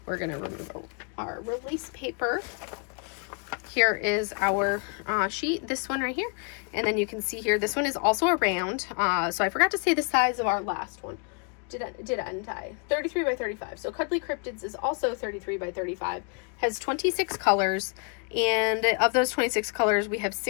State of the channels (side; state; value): right; quieter; 38.5 dB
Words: We're going to remove our release paper. Here is our sheet, this one right here. And then you can see here, this one is also a round. So I forgot to say the size of our last one. Didn't I? 33 by 35. So Cuddly Cryptids is also 33 by 35. Has 26 colors. And of those 26 colors, we have